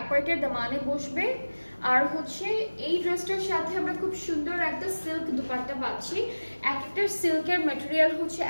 পার্টের দামানে বসবে। আর হচ্ছে এই ড্রেসটার সাথে আমরা খুব সুন্দর একটা সিল্ক দুপাট্টা পাচ্ছি। এক একটা সিল্কের ম্যাটেরিয়াল হচ্ছে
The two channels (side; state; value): both; inverted; correlation -1.00